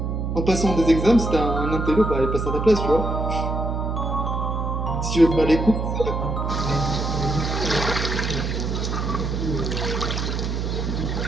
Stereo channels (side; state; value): right; noise; hum, 2 dB below the sound